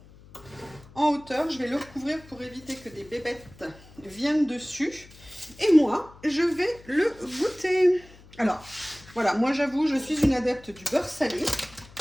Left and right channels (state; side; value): noise; left; hum, 22 dB below the sound